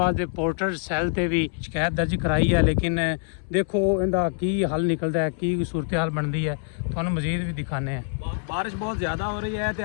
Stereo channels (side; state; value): right; silent; 62 dB below the other